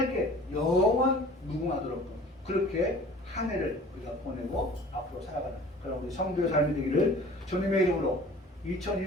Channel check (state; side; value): normal; both; correlation 0.46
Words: 영원 무궁하도록 그렇게 한 해를 우리가 보내고 앞으로 살아가는 그런 우리 성도의 삶이 되기를 주님의 이름으로